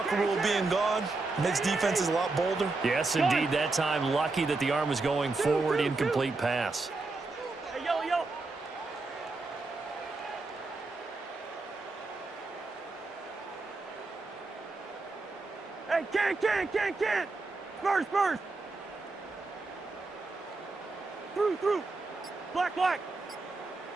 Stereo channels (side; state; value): left; quieter; 3.5 dB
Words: rule being gone makes defenses a lot bolder? Yes, indeed. That time, lucky that the arm was going forward. Incomplete pass. Hey, yellow. Hey, can't. Spurs. Through. Black.